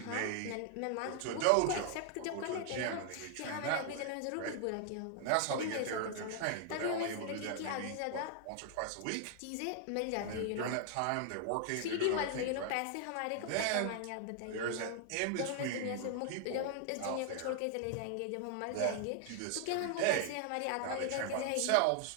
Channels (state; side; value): different; both; correlation 0.00